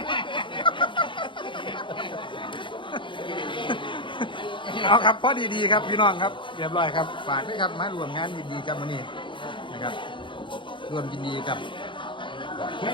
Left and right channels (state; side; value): late; right; 0.24 ms